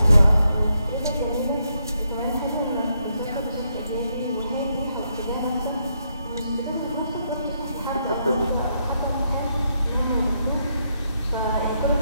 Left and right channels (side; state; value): both; inverted; correlation -0.79